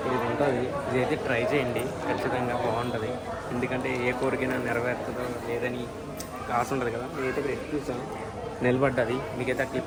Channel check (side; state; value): both; identical; correlation 1.00